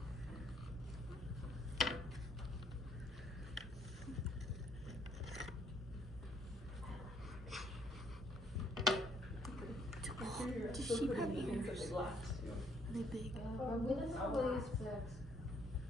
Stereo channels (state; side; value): normal; both; correlation 0.67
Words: Does sheep have ears? Are they big?